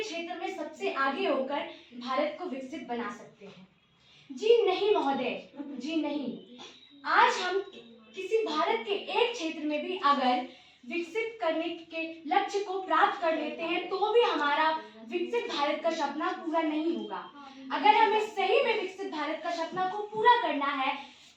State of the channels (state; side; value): identical; both; correlation 1.00